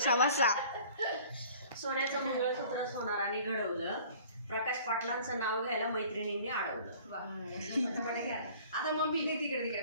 सोन्याचं मंगळसूत्रच होणार आणि घडवलं. प्रकाश पाटलांचं नाव घ्यायला मैत्रिणींनी अडवलं. आता मम्मी तिकडे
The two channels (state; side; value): inverted; both; correlation -0.50